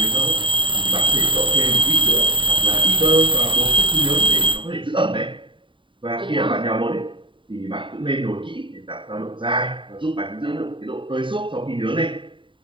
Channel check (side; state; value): left; late; 0.24 ms